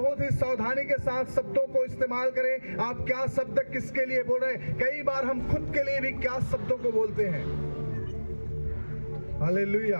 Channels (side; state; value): both; inverted; correlation -1.00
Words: ही सावधानी के साथ शब्दों को इस्तेमाल करें। आप क्या शब्द किसके लिए बोल रहे हैं। कई बार हम खुद के लिए भी क्या शब्दों को बोलते हैं। हालेलुया।